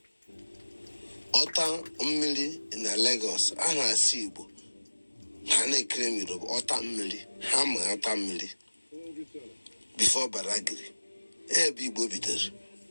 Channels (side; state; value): both; inverted; correlation -1.00